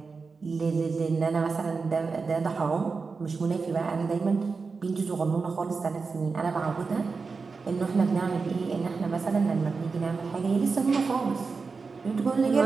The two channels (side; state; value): left; quieter; 4.6 dB